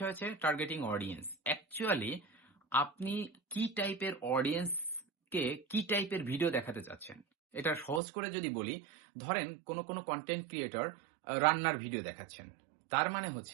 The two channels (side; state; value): left; drops out; at 8.0 s